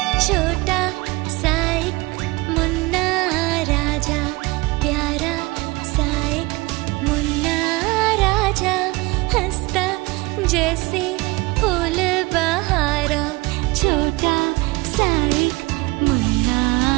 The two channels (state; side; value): quieter; left; 23.3 dB